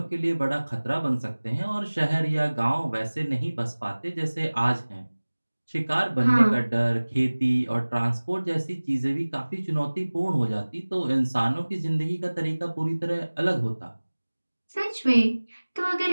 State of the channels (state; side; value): inverted; both; correlation -1.00